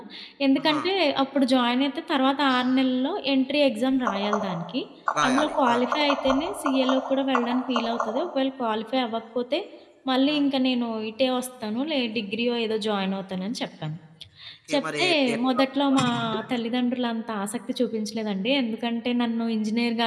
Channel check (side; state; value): both; identical; correlation 1.00